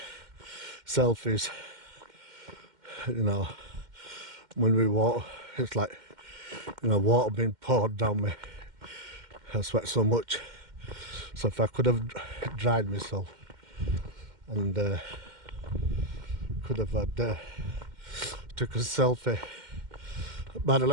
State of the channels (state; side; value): late; left; 2.1 ms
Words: selfies. You know, when we walk, it's like, you know, water being poured down me. I sweat so much. So if I could have dried myself and could have had took a selfie. By the